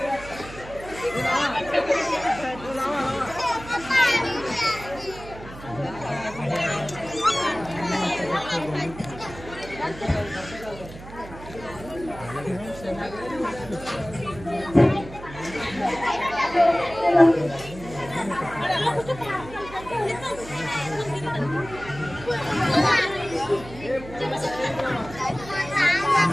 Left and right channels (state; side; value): noise; right; hum, 15 dB below the sound